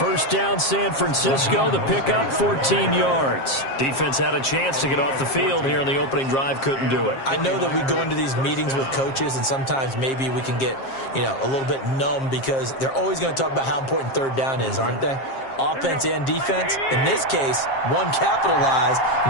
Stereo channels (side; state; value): right; late; 7.5 ms